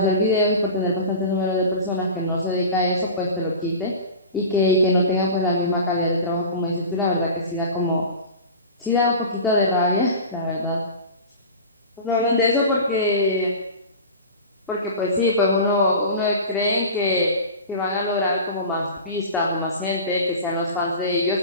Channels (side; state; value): both; inverted; correlation -0.33